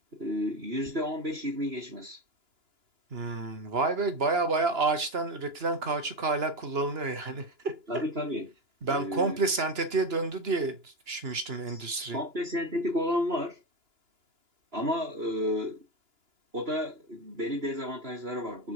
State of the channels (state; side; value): late; left; 2.9 ms